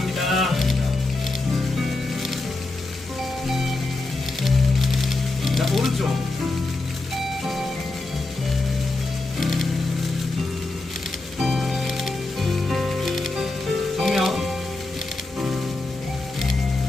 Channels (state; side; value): quieter; right; 3.0 dB